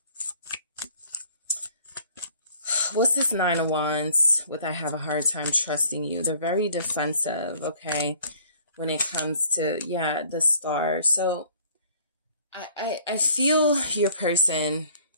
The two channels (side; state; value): both; inverted; correlation -0.56